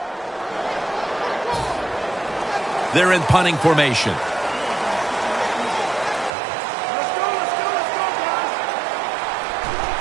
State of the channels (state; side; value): drops out; left; at 6.3 s